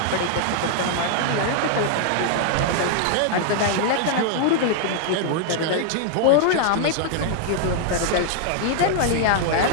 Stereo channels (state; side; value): different; both; correlation -0.01